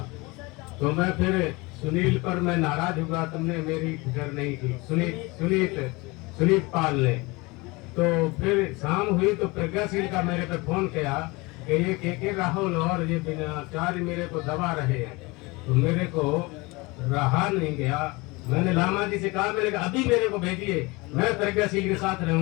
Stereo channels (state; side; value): quieter; right; 24.6 dB